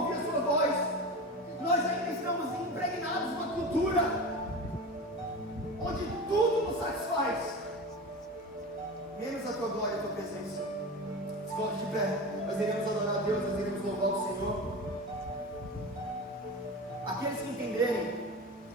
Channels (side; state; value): both; normal; correlation 0.28